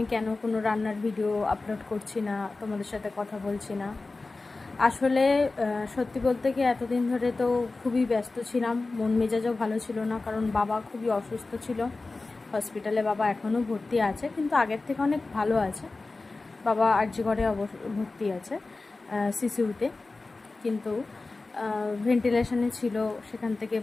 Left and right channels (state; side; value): quieter; right; 3.5 dB